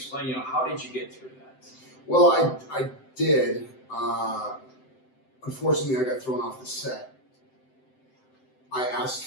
how did you get through that? Well, I did. Unfortunately, I got thrown off the set. I asked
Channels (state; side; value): late; right; 7.7 ms